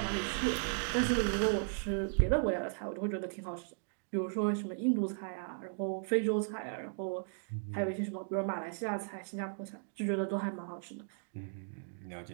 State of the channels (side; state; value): left; silent; digital silence